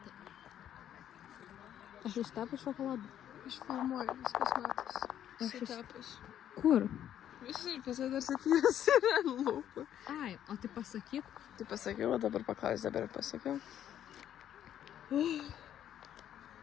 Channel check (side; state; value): right; quieter; 10.5 dB